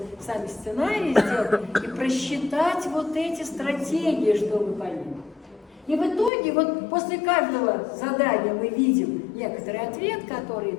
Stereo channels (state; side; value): drops out; right; at 6.3 s